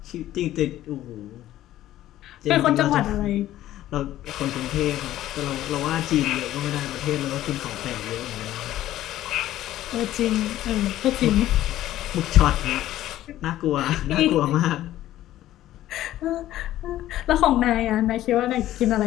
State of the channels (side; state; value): right; quieter; 13.8 dB